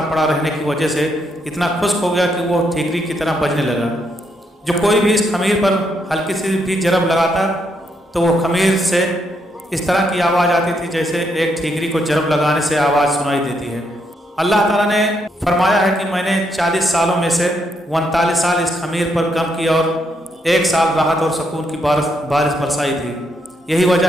پڑا رہنے کی وجہ سے اتنا خشک ہو گیا کہ وہ ٹھیکری کی طرح بجنے لگا۔ جو کوئی بھی اس خمیر پر ہلکی سی بھی جرب لگاتا تو وہ خمیر سے اس طرح کی آواز آتی تھی جیسے ایک ٹھیکری کو جرب لگانے سے آواز سنائی دیتی ہے۔ اللہ تعالیٰ نے فرمایا ہے کہ میں نے 40 سالوں میں سے 39 سال اس خمیر پر کم کیا اور 1 سال راحت اور سکون کی بارش برسائی تھی۔ یہی وجہ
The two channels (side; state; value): both; normal; correlation 0.77